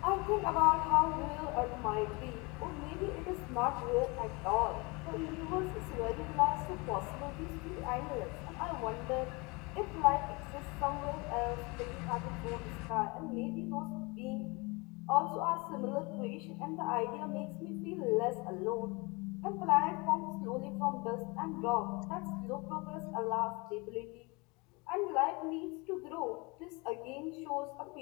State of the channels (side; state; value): right; quieter; 27.3 dB